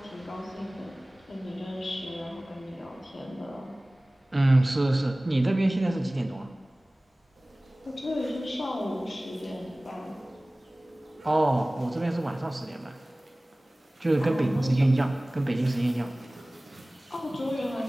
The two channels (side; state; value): both; normal; correlation 0.98